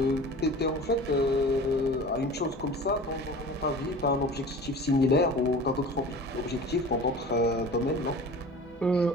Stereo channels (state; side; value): normal; both; correlation 0.39